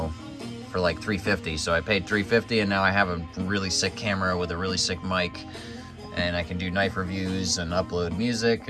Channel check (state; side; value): identical; both; correlation 1.00